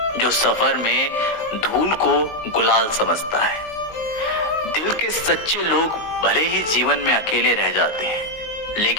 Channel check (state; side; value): late; right; 19 ms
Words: जो सफर में धूल को गुलाल समझता है। दिल के सच्चे लोग भले ही जीवन में अकेले रह जाते हैं,